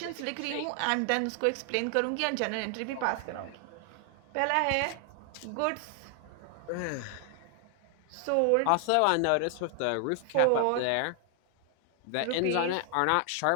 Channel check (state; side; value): different; both; correlation 0.00